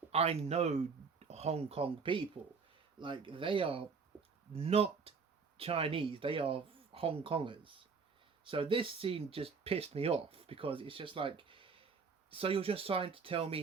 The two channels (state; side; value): quieter; left; 5.2 dB